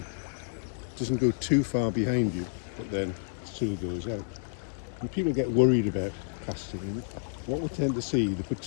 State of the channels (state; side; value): silent; right; 58 dB below the other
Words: doesn't go too far behind you, but then still goes out. And people get worried about casting. And what we tend to see, they put